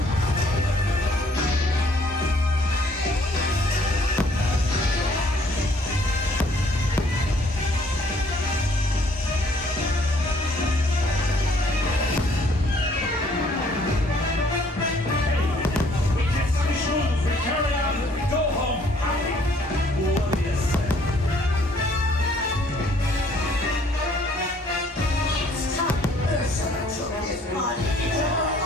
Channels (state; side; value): normal; both; correlation 0.62